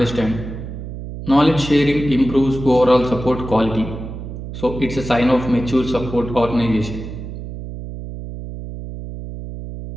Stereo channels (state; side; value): noise; right; hum, 9 dB below the sound